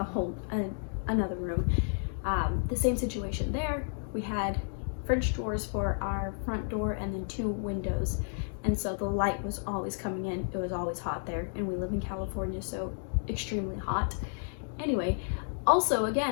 another room. The same situation there. We had French doors for our front door and then 2 windows. And so the light was always coming in. It was always hot there, and we live in California, so extremely hot. Anyway, also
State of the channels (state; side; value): silent; right; digital silence